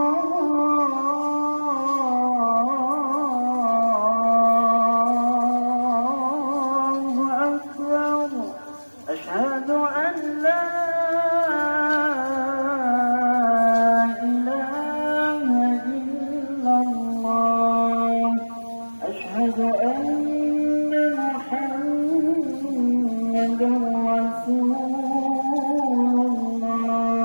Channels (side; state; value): both; inverted; correlation -1.00